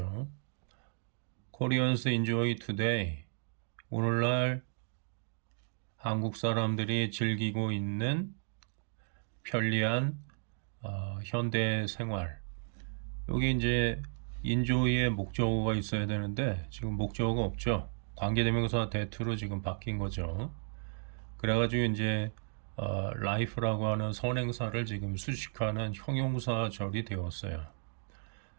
Koreans enjoy today. 오늘날 한국 사람들이 즐기고 있는 편리한 현대 생활. 여기 이제 enjoy의 목적어가 있어야 되는데 지금 목적어가 없죠. 관계대명사 that로 지금 바뀐 거죠. 그래가지고 이제 life라고 하는 선행사를 지금 수식하는 형용사절이 되었어요.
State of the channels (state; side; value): silent; left; digital silence